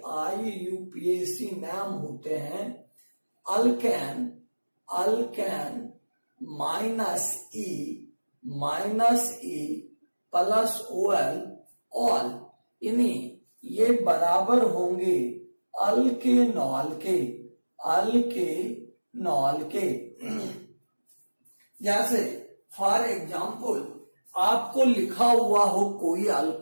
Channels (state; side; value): inverted; both; correlation -1.00